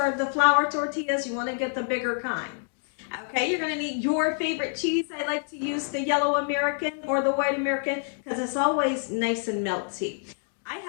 the flour tortillas. You wanna get the bigger kind. Okay, you're gonna need your favorite cheese. I like to use the yellow American or the white American because it's always nice and melty. I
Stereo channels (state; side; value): silent; right; 58 dB below the other